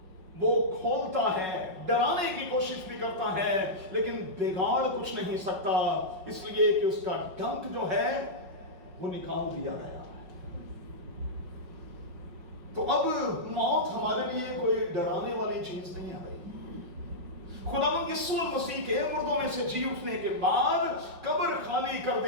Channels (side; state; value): left; late; 5.4 ms